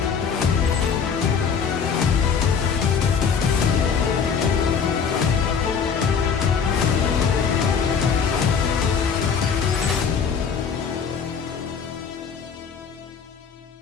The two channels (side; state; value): right; quieter; 6.5 dB